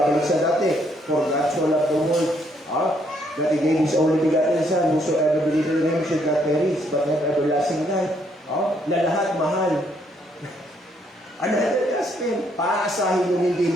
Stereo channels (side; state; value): both; normal; correlation 0.70